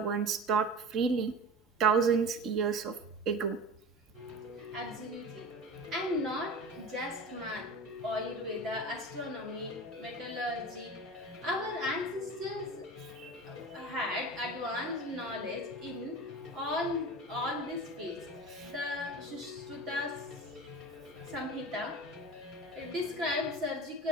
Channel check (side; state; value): both; normal; correlation 0.33